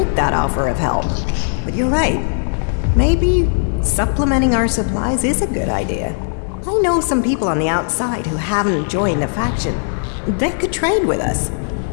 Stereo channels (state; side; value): silent; right; digital silence